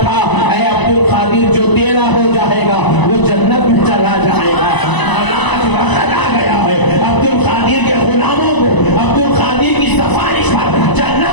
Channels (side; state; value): right; late; 1.0 ms